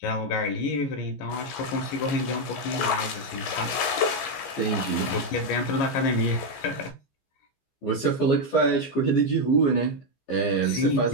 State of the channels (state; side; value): late; right; 15 ms